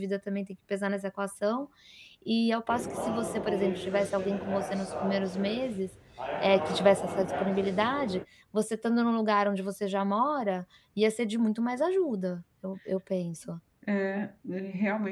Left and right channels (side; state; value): both; identical; correlation 1.00